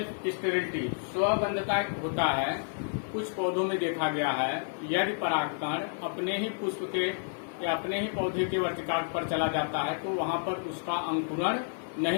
स्टेरिलिटी, स्वबंधता होता है। कुछ पौधों में देखा गया है यदि परागकण अपने ही पुष्प के या अपने ही पौधे के वर्तिकाग्र पर चला जाता है तो वहां पर उसका अंकुरण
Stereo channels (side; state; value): right; silent; 56 dB below the other